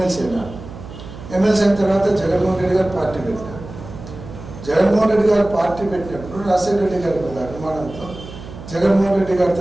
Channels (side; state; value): right; noise; hum, 14 dB below the sound